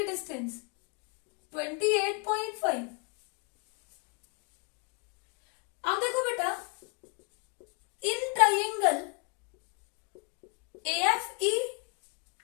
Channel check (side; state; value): right; quieter; 35.1 dB